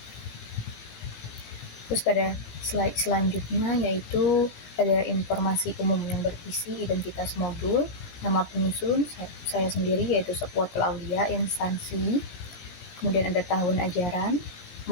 Terus pada slide selanjutnya yaitu ada informasi umum yang berisi identitas modul, nama penyusun saya sendiri yaitu Safwatul Aulia, instansi, kemudian ada tahun ajaran,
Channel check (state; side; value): late; right; 18 ms